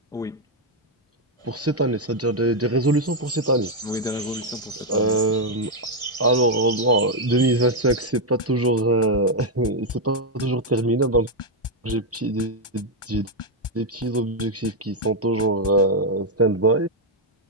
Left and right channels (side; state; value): both; normal; correlation 0.01